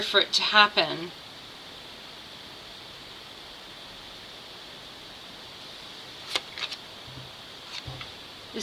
for it to happen. The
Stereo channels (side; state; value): both; identical; correlation 1.00